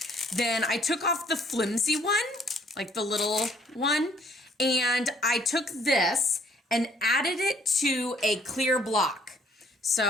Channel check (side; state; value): both; normal; correlation 0.61